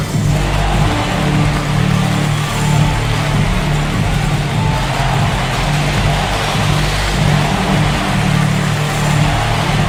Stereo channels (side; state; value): both; identical; correlation 1.00